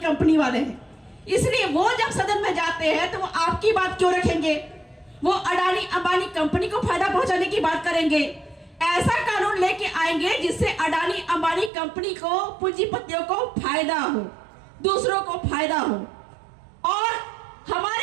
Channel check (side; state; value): left; drops out; at 11.7 s